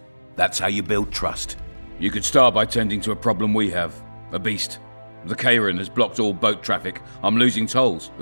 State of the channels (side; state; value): both; inverted; correlation -1.00